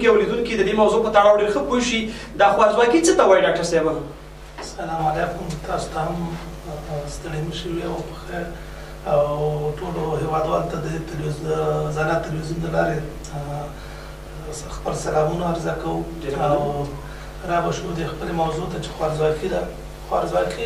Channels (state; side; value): identical; both; correlation 1.00